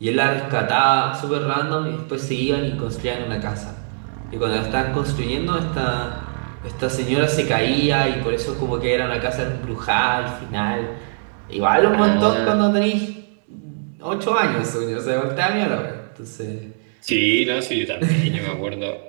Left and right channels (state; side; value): silent; left; 65 dB below the other